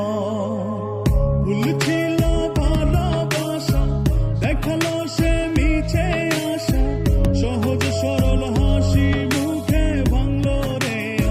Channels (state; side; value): identical; both; correlation 1.00